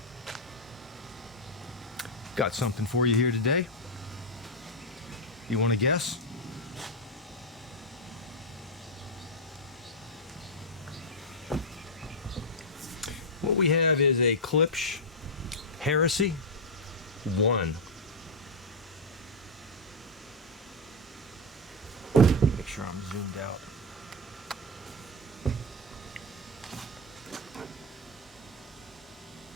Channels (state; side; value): normal; both; correlation 0.01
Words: got something for you here today. You want to guess? What we have is a Klipsch Heresy 1. Make sure I'm zoomed out.